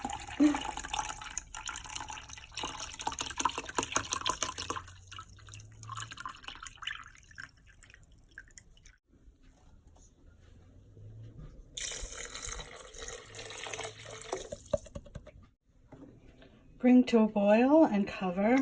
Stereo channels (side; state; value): both; identical; correlation 1.00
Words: Bring to a boil and cover,